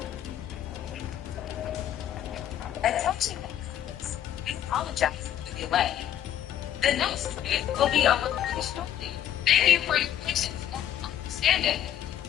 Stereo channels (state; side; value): quieter; right; 10.9 dB